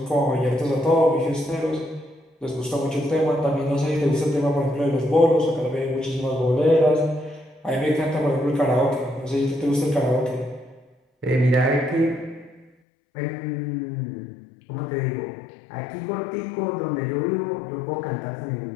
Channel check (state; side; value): drops out; right; at 12.7 s